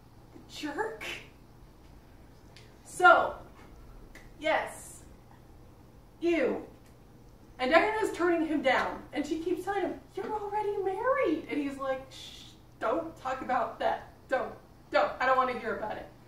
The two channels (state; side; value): identical; both; correlation 1.00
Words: The jerk. So, yes, ew. And Diana's turning him down, and she keeps telling him, you're already married. And he's like, shh, don't talk about that. Don't, I don't want to hear about it.